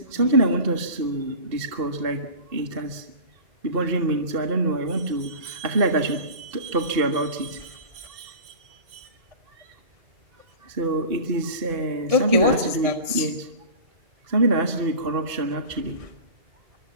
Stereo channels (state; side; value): late; left; 2.7 ms